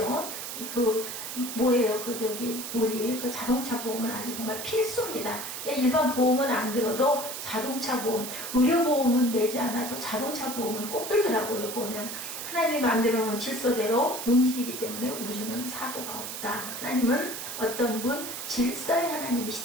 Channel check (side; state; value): right; noise; hiss, 7 dB below the sound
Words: 뭐예요? 우리 자동차 보험은 아주 정말 필수입니다. 일반 보험은 안 들어도 자동차 보험, 의료보험은 내지 않아도 자동차 보험은 꼭 들더라고요. 보면 하나님이 만들어 놓은 질서대로 움직이기 때문에 우주는 사고가 없다. 하나님은 어떤 분? 질서의